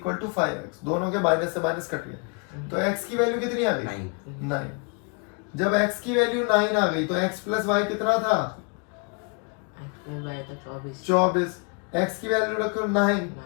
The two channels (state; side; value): quieter; right; 33.9 dB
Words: टू 5x, दोनों के माइनस से माइनस कट गए, तो x की वैल्यू कितनी आ गई 9। जब x की वैल्यू 9 आ गई तो x प्लस वाई कितना था फिर y का 24 24, x की वैल्यू रखो 9